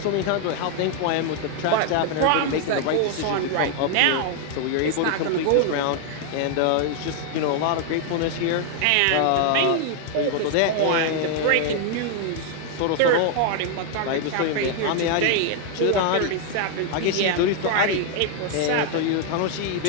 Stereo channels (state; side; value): different; both; correlation 0.00